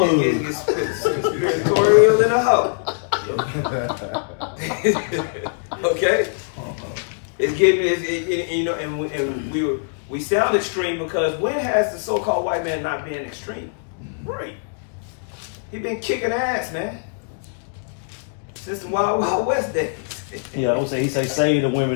mug. conspiratorial in a hoe. Okay? It's getting, and we sound extreme because when has the so-called white man not been extreme? Right. He been kicking ass, man. Since the Wild Wild West days. Yeah, I would say he say save the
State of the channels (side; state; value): right; silent; digital silence